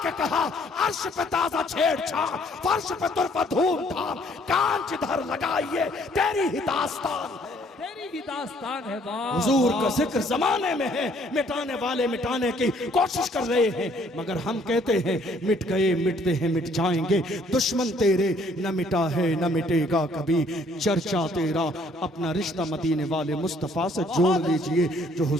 के कहा अर्श पे ताजा छेड़छाड़, फर्श पे तुरफा धूम धाम, कान जिधर लगाइए तेरी ही दास्तान, तेरी ही दास्तान है। हुजूर का जिक्र जमाने में है, मिटाने वाले मिटाने की कोशिश कर रहे हैं, मगर हम कहते हैं मिट गए मिटते हैं मिट जाएंगे। दुश्मन तेरे न मिटा है न मिटेगा कभी, चर्चा तेरा अपना रिश्ता मदीने वाले मुस्तफा से जोड़ लीजिए। जो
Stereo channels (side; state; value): both; normal; correlation 0.62